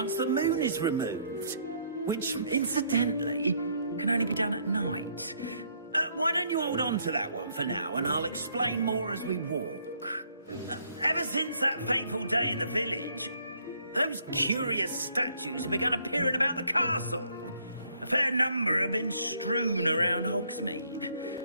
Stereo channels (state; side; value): inverted; both; correlation -0.67